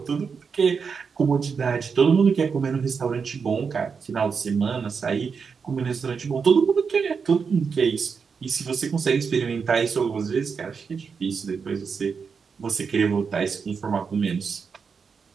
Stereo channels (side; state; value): left; quieter; 5.7 dB